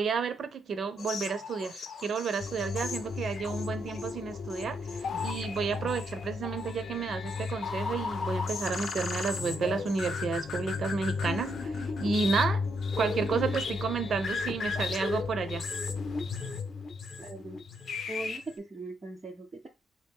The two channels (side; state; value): both; normal; correlation 0.76